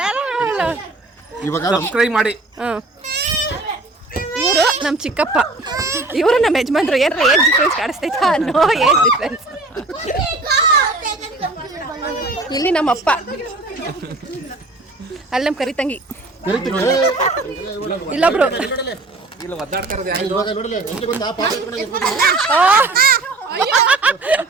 ಇವಾಗ ಸಬ್ಸ್ಕ್ರೈಬ್ ಮಾಡಿ ಇವರು ನಮ್ಮ ಚಿಕ್ಕಪ್ಪ ಇವರು ನಮ್ಮ ಯಜಮಾನ್ರು ಏನಾರ ಏಜ್ ಡಿಫ್ರೆನ್ಸ್ ಕಾಣಿಸ್ತೈತಾ ನೋ ಏಜ್ ಡಿಫ್ರೆನ್ಸ್ ಇಲ್ಲಿ ನಮ್ಮಪ್ಪ ಅಲ್ಲಿ ನಮ್ಮ ಕರಿತಂಗಿ ಇಲ್ಲೊಬ್ರು ಇಲ್ಲ ಒದ್ದಾಡ್ತಾರದು ಇವಾಗ ನೋಡಲಿ ಎಂಟು ಬಂದ ಪಾಪ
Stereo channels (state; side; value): quieter; left; 3.1 dB